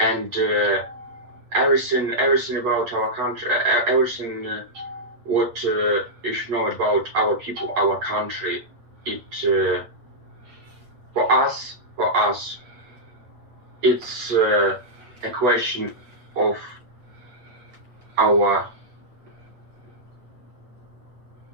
everything about our country, everything what you should know about our people, our country. It for us, it's a question of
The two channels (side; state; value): left; late; 8.3 ms